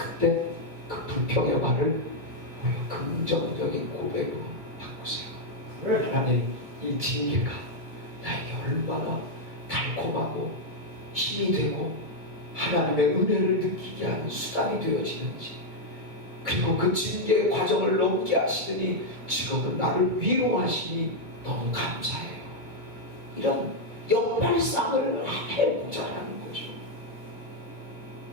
그 불평의 말을 우리가 긍정적인 고백으로 바꾸세요. 하나님, 이 징계가 나에게 얼마나 달콤하고 힘이 되고 하나님의 은혜를 느끼게 하는 수단이 되어지는지, 그리고 그 징계의 과정을 넘게 하시더니 지금은 나를 위로하시니 너무 감사해요. 이런 역발상을 해보자라는 거죠.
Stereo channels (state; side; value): late; left; 2.2 ms